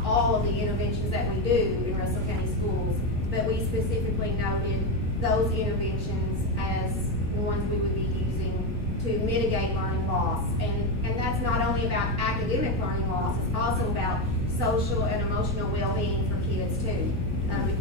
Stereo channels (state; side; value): normal; both; correlation 0.11